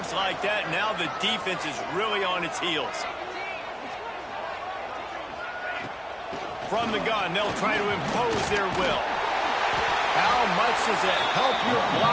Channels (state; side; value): identical; both; correlation 1.00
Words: like that, now the defense is really on its heels. From the gun, they'll try to impose their will. How much does it help your